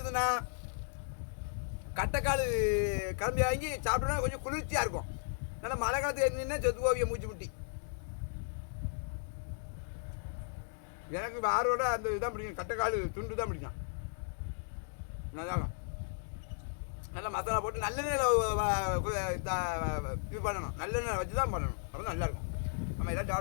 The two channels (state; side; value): silent; right; digital silence